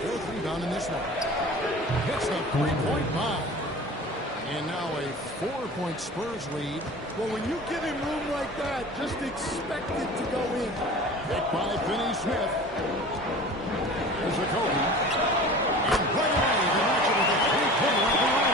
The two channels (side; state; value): both; normal; correlation 0.39